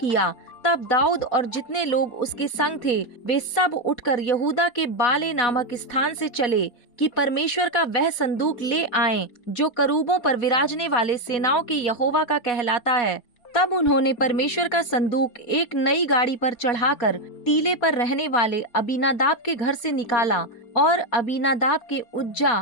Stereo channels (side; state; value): right; late; 4.2 ms